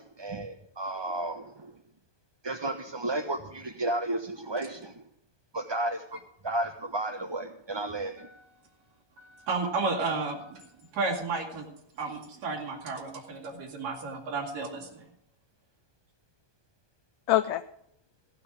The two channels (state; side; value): late; left; 1.2 ms